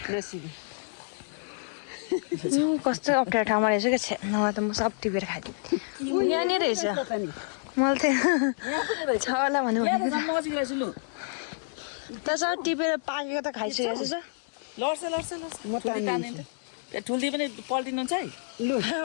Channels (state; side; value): silent; right; digital silence